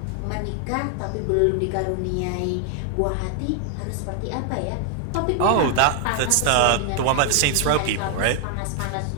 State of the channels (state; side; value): different; both; correlation 0.00